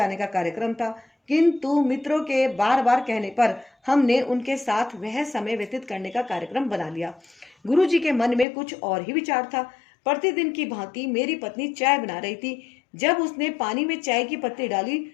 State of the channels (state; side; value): drops out; right; at 8.5 s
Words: का कार्यक्रम था, किंतु मित्रों के बार बार कहने पर हमने उनके साथ वह समय व्यतीत करने का कार्यक्रम बना लिया। गुरु जी के मन में कुछ और ही विचार था। प्रतिदिन की भांति मेरी पत्नी चाय बना रही थी। जब उसने पानी में चाय की पत्ती डाली